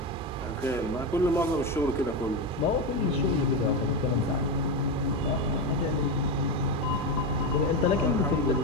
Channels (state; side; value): normal; both; correlation 0.14